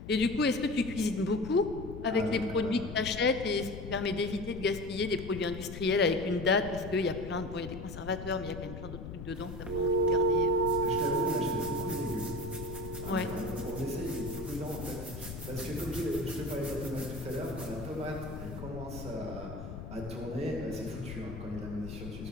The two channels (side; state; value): left; noise; rumble, 9 dB below the sound